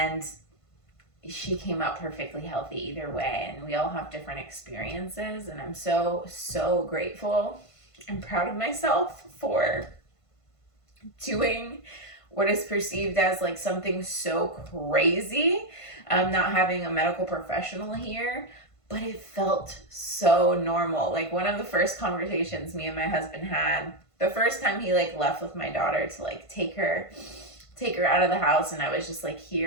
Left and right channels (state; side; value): late; right; 1.5 ms